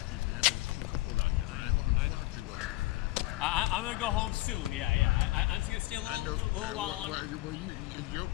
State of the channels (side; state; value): right; quieter; 18.7 dB